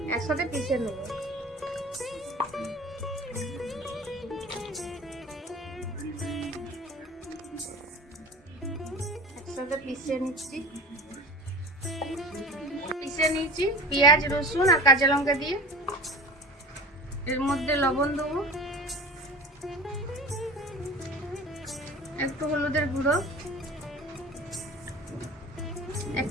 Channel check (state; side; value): normal; both; correlation 0.37